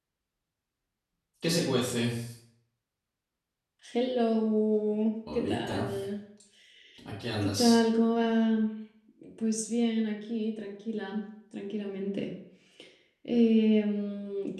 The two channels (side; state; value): both; identical; correlation 1.00